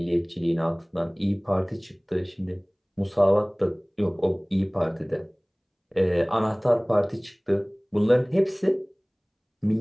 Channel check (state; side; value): identical; both; correlation 1.00